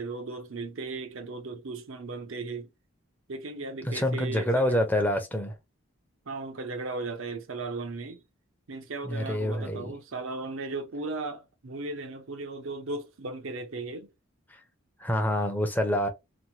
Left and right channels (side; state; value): both; normal; correlation 0.52